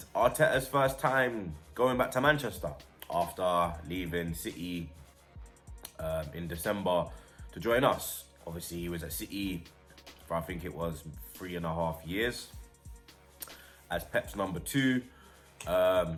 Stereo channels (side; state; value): both; identical; correlation 1.00